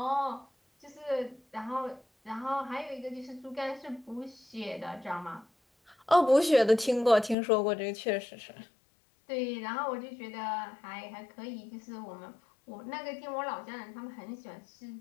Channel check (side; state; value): right; drops out; at 7.4 s